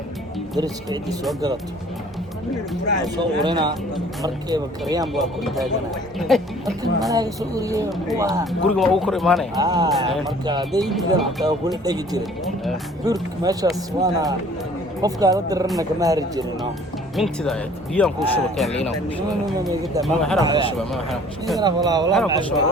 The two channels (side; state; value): both; normal; correlation 0.53